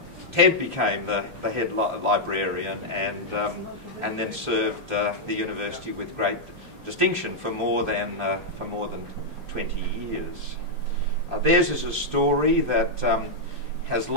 Ted became the head librarian and then served the university with great distinction for more than 20 years. Theirs is a story that has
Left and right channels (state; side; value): late; left; 2.5 ms